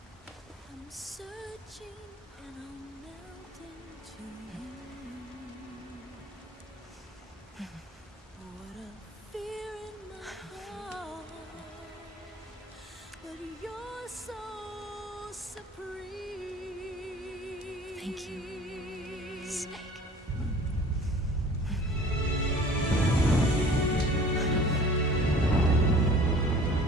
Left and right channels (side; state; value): both; normal; correlation 0.47